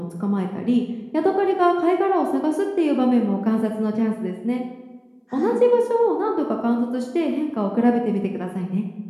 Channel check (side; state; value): both; identical; correlation 1.00